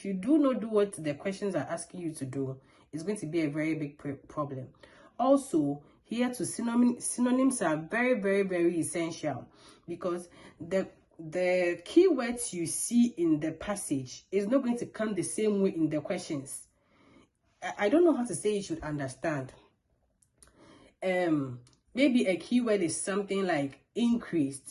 you do not do what the questions are asking you to do, it's going to be a very big problem. Also, here too, synonyms are very, very, very essential, because the keywords you see in the passage is not going to come the same way in the questions. I don't know how to say you should understand. Maybe a keyword is something like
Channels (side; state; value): both; identical; correlation 1.00